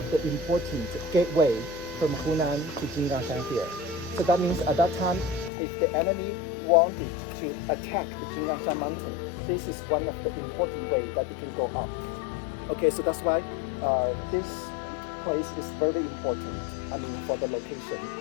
the important gateway from Hunan to Jinggangshan here. So that means at that time, if the enemy wanted to attack the Jinggangshan Mountain, this is one of the important way that they can go up. Okay, so that's why this place is very important. I mean, for the location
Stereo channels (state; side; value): drops out; right; at 5.5 s